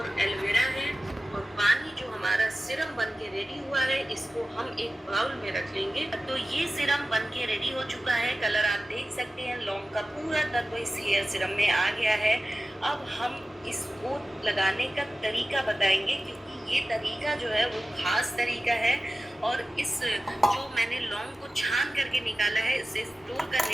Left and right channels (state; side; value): normal; both; correlation 0.95